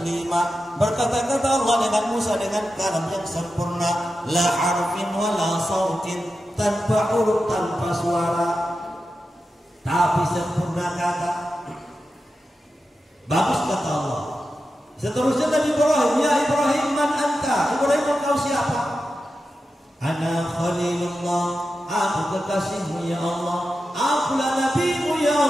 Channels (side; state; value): both; normal; correlation 0.91